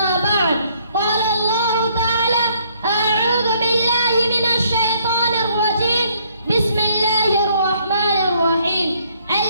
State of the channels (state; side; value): inverted; both; correlation -0.66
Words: بعد، قال الله تعالى: أعوذ بالله من الشيطان الرجيم، بسم الله الرحمن الرحيم.